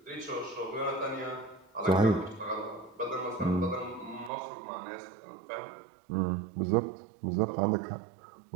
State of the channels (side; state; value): left; drops out; at 4.3 s